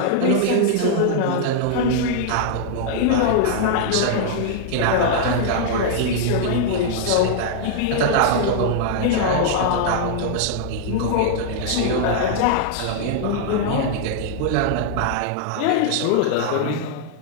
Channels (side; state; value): both; different; correlation -0.01